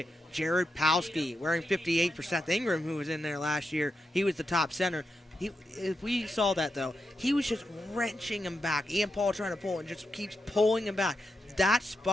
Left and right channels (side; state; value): both; normal; correlation 0.86